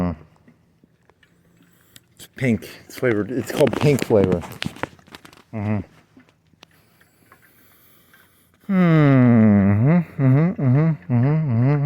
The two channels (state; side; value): identical; both; correlation 1.00